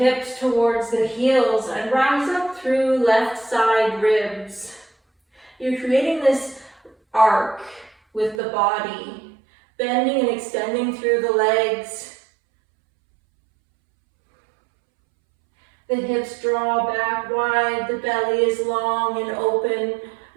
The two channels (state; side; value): drops out; left; at 8.4 s